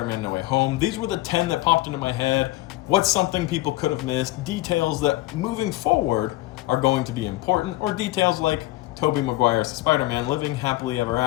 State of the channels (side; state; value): right; quieter; 17.9 dB